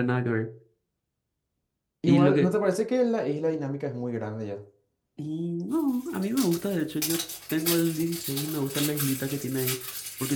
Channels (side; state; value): both; identical; correlation 1.00